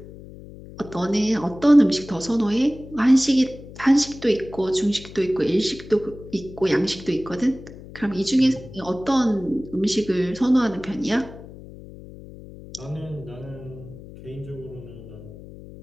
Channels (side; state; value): left; noise; hum, 16 dB below the sound